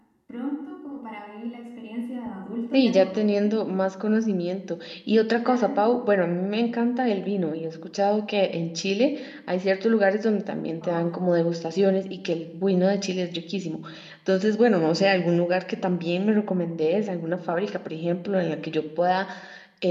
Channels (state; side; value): identical; both; correlation 1.00